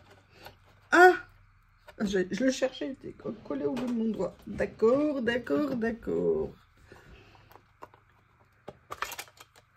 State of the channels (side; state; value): both; identical; correlation 1.00